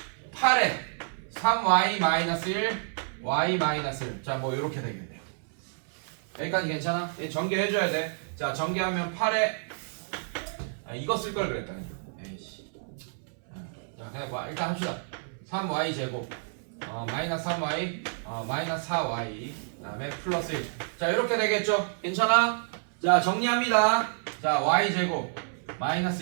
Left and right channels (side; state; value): left; silent; 58 dB below the other